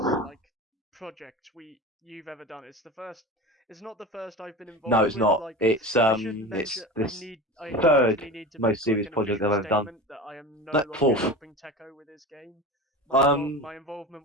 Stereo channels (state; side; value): normal; both; correlation 0.31